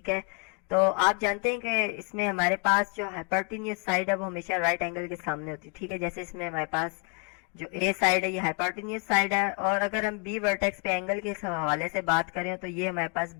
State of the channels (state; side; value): quieter; right; 34.9 dB